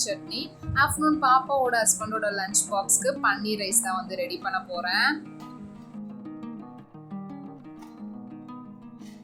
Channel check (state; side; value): identical; both; correlation 1.00